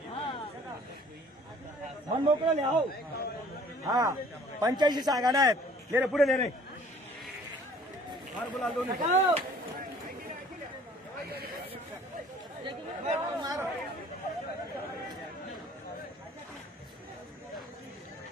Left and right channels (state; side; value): normal; both; correlation 0.53